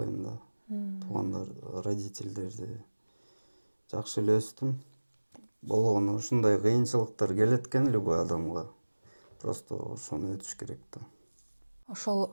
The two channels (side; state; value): both; inverted; correlation -1.00